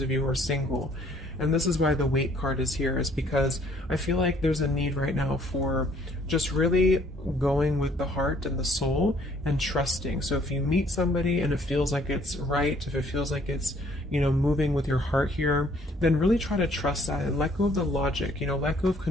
you who are single. And this is why the wait card is here, is because I feel like there's a need right now for just really going with the heart and the soul and trusting. So if you meet somebody and it feels like it's right, if it feels like it's, you know, moving with your heart here, then really try to trust that and let go of the logic, you know, let go of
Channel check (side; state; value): both; normal; correlation 0.61